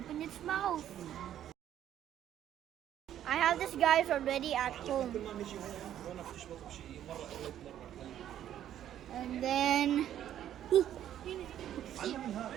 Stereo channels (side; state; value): left; quieter; 11.1 dB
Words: its mouth. I have this guys already at home. And then it's